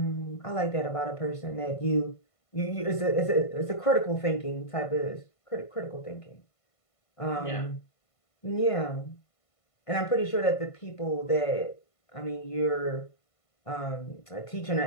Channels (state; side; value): late; right; 1.5 ms